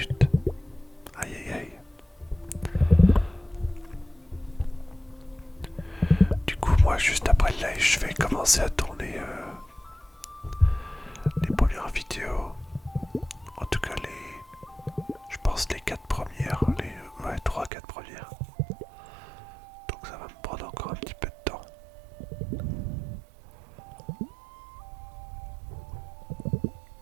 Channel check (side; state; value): left; drops out; at 17.7 s